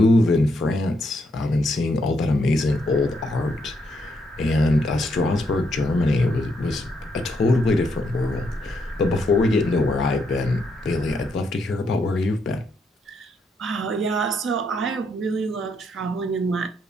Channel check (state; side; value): normal; both; correlation 0.77